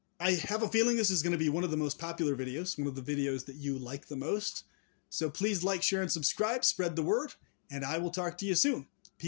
I have a feeling this is going to be one of the most popular videos, one of the videos that you like the most. So please like, share, and subscribe, spread the word, and I will talk to you soon.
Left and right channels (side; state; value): right; silent; 54 dB below the other